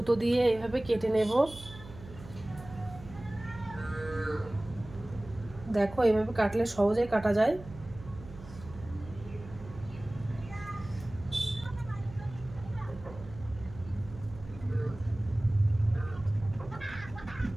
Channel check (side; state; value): right; noise; hum, 16 dB below the sound